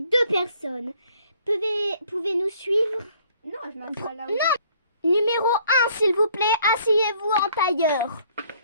personnes. Pouvez-nous suivre? Non, je m'assois là. Non. Numéro 1, s'il vous plaît, asseyez-vous en tailleur.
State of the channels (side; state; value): both; inverted; correlation -0.61